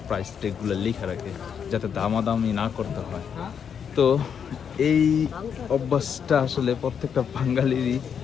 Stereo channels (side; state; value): right; quieter; 7.5 dB